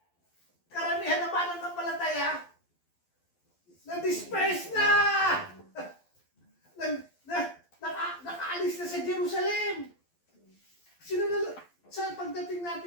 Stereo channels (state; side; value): late; right; 12 ms